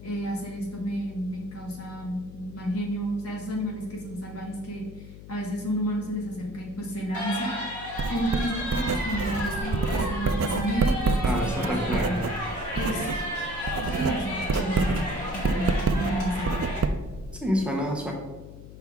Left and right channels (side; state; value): left; noise; hum, 15 dB below the sound